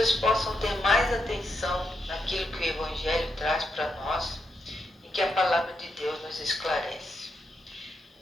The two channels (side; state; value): both; normal; correlation 0.83